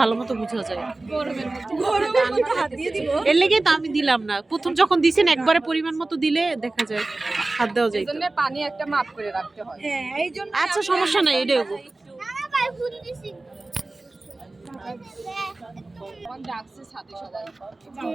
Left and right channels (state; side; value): quieter; left; 3.1 dB